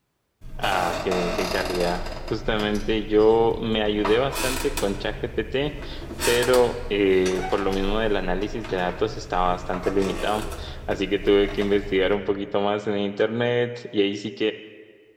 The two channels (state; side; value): identical; both; correlation 1.00